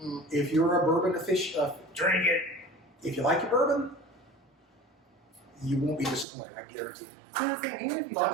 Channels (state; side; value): drops out; left; at 6.2 s